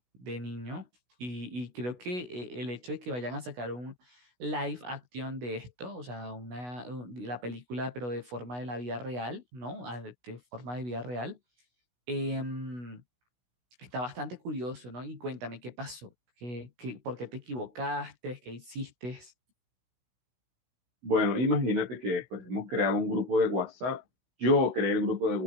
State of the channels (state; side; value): late; left; 16 ms